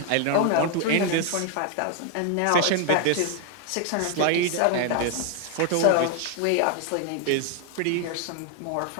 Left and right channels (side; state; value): both; different; correlation 0.01